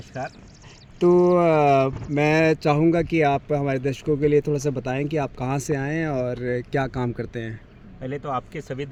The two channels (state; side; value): identical; both; correlation 1.00